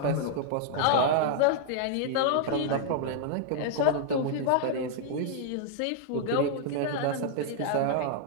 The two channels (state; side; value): different; both; correlation -0.01